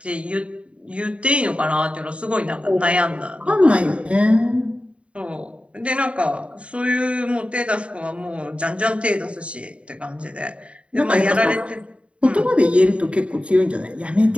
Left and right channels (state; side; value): late; left; 0.061 ms